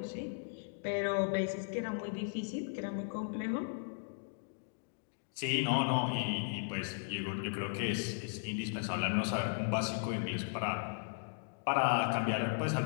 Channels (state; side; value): silent; right; digital silence